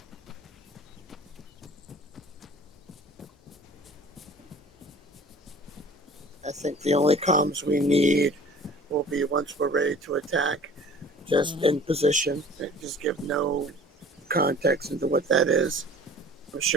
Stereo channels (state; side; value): normal; both; correlation 0.47